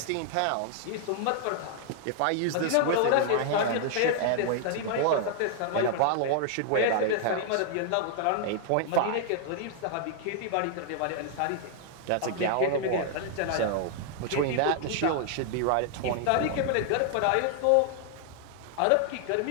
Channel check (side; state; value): both; different; correlation 0.00